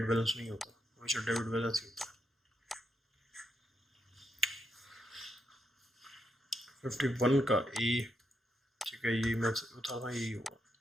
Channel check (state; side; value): normal; both; correlation 0.80